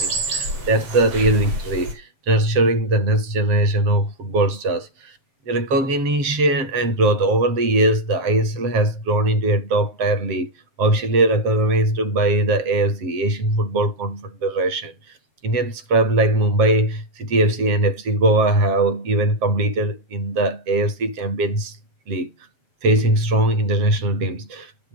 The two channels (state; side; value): late; left; 7.7 ms